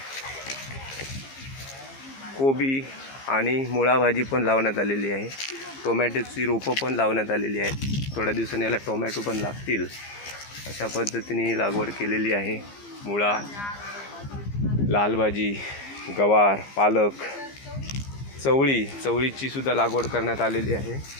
कोबी आणि मुळा भाजी पण लावण्यात आलेली आहे। टोमॅटोची रोपं पण लावण्यात आलेली आहेत, थोड्या दिवसांनी याला टोमॅटो पण लागतील, अशा पद्धतीने लागवड केलेली आहे। मुळा, लाल भाजी, गवार, पालक, चवळीची सुद्धा लागवड करण्यात आलेली आहे।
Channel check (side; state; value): right; late; 15 ms